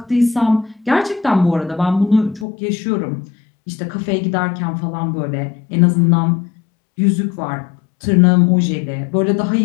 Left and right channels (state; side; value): drops out; right; at 2.5 s